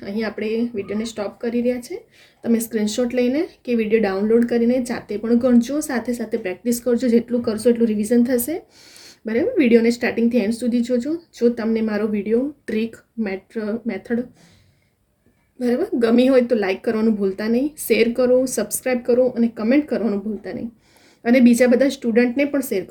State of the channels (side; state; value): both; identical; correlation 1.00